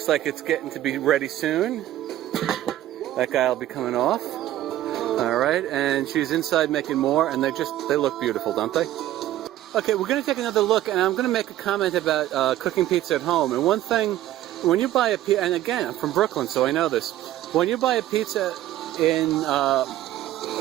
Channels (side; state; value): left; quieter; 13.7 dB